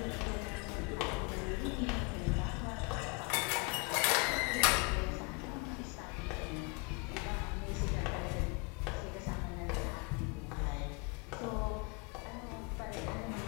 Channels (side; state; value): right; quieter; 30.6 dB